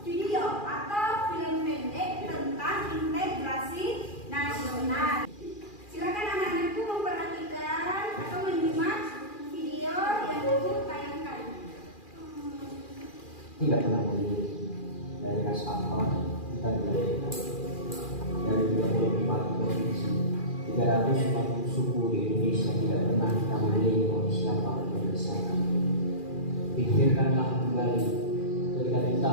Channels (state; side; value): late; right; 2.4 ms